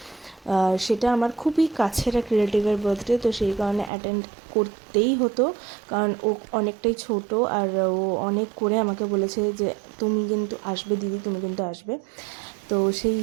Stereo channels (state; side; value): drops out; left; at 3.9 s